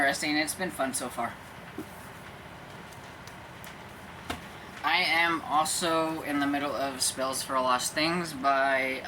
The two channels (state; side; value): identical; both; correlation 1.00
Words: It's been fun so far. I am also in the middle of Spells for Lost Things by